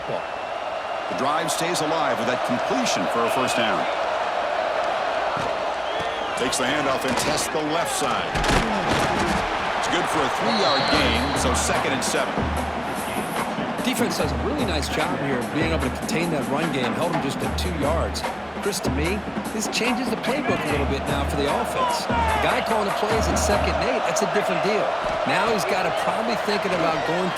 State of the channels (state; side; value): identical; both; correlation 1.00